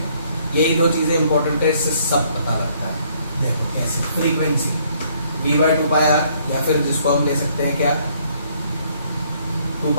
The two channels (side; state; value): both; inverted; correlation -0.65